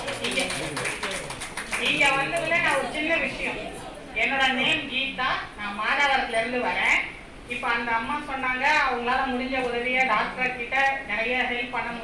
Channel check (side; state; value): both; identical; correlation 1.00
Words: நீங்க வந்ததுல நான் ஒரு சின்ன விஷயம், என்னோட நேம் கீதா, நான் மாதாவரத்துல இருந்து வரேன். இப்ப அந்த அம்மா சொன்னாங்க அவங்களால முடிஞ்ச உதவியை டாக்டர் கிட்ட நிறைய ஹெல்ப் பண்ண